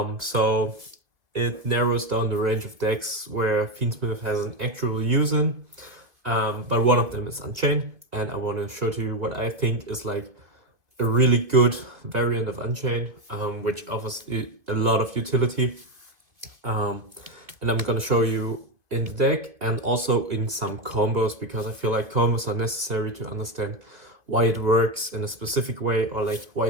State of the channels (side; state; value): left; late; 2.0 ms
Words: So it narrows down the range of decks where Fiendsmith has an actual use in, but one of them is Unchained, and I want to show to you what I think is like a really good variant of Unchained, which offers a lot of utility. And I'm gonna show you in the deck and also in some combos, because I feel like combos are necessary to understand why it works in a specific way, or like why